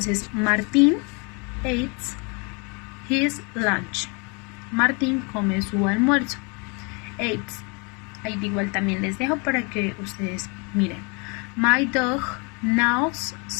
Martín eats his lunch. Martín come su almuerzo. Eats. Ahí igual también les dejo para que ustedes miren. My dog knows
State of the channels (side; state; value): right; quieter; 32.1 dB